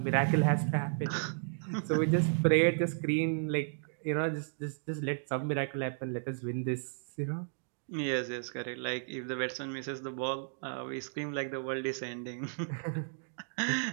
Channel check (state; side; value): silent; left; digital silence